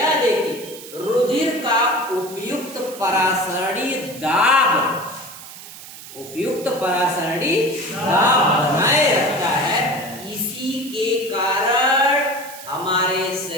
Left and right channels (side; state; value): right; noise; hiss, 15 dB below the sound